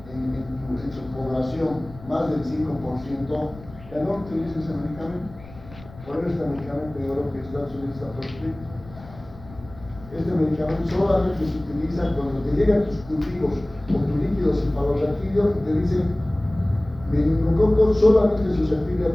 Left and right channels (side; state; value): left; noise; rumble, 18 dB below the sound